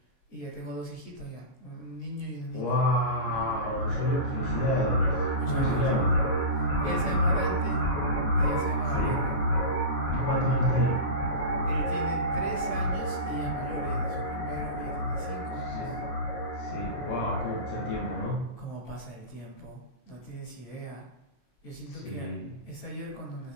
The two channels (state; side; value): late; right; 23 ms